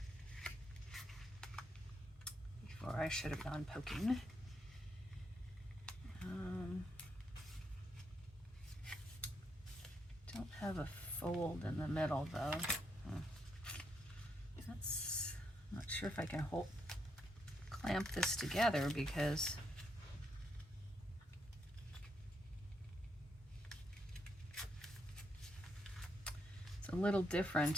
before I should have gone poking. Don't have a fold in the middle though. That's, I'm not sure if I can clamp this together because it's a little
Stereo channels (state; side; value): normal; both; correlation 0.78